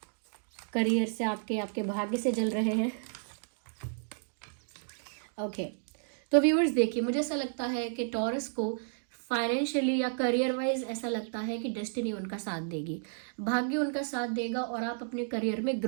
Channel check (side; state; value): left; silent; digital silence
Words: करियर से आपके भाग्य से जल रहे हैं। ओके, तो व्यूअर्स देखिए, मुझे ऐसा लगता है कि टॉरस को फाइनेंशियली या करियर वाइज ऐसा लगता है कि डेस्टिनी उनका साथ देगी, भाग्य उनका साथ देगा, और आप अपने करियर में